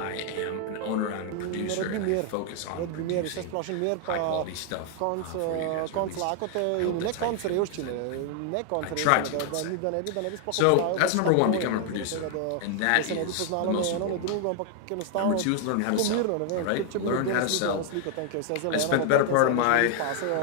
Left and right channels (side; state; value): both; different; correlation 0.00